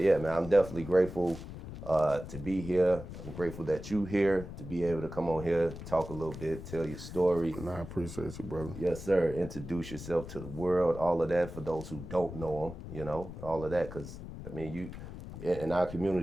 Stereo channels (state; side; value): noise; left; rumble, 11 dB below the sound